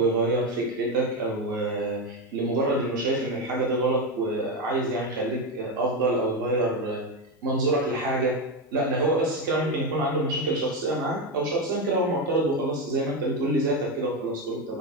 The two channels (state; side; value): normal; both; correlation 0.12